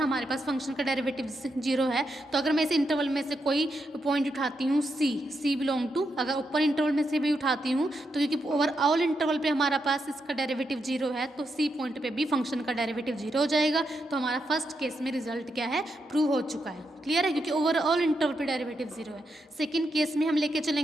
हमारे पास फंक्शन का डेरिवेटिव 0 है, तो अगर मैं इस इंटरवल में से कोई पॉइंट उठाती हूँ सी बिलोंग टू, अगर ऊपर इंटरवल में से भी उठाती हूँ तो क्योंकि ओवरऑल इंटरवल पे हमारा पास इसका डेरिवेटिव 0 है, तो सी पॉइंट पे भी फंक्शन का डेरिवेटिव 0 हो जाएगा। तो हमारा फर्स्ट केस में रिजल्ट क्या है, प्रूव हो चुका है। क्लियर है, क्योंकि ओवरऑल इंटरवल पे डेरिवेटिव 0 है। सेकेंड केस में हम लेके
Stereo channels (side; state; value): both; normal; correlation 0.83